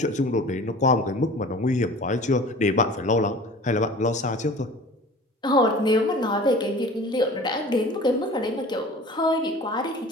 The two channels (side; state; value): both; normal; correlation 0.42